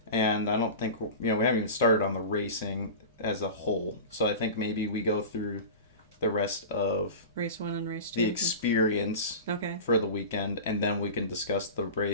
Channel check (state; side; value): inverted; both; correlation -0.31